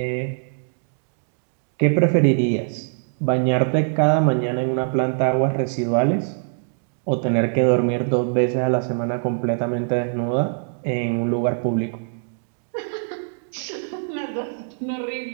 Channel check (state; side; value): silent; left; digital silence